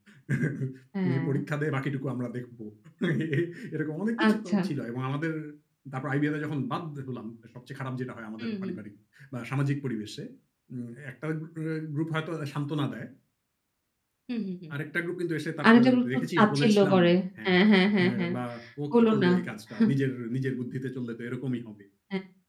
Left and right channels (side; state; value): both; identical; correlation 1.00